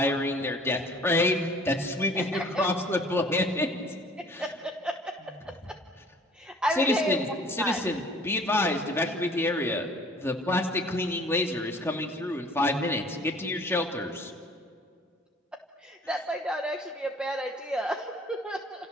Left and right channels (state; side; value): normal; both; correlation 0.52